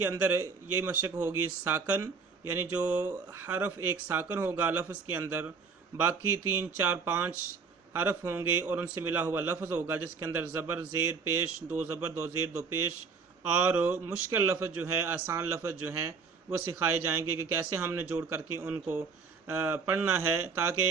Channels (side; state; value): left; quieter; 5.2 dB